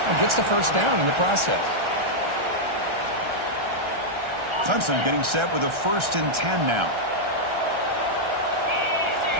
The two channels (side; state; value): left; late; 1.3 ms